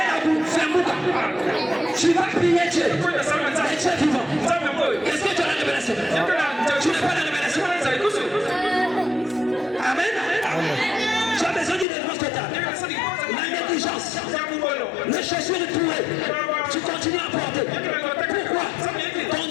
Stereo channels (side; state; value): right; drops out; at 11.9 s